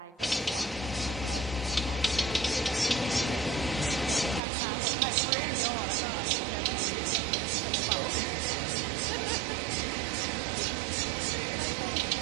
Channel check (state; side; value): drops out; left; at 4.4 s